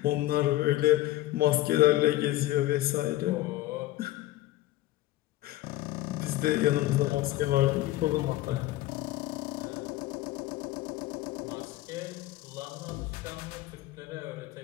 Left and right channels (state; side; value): quieter; right; 16.0 dB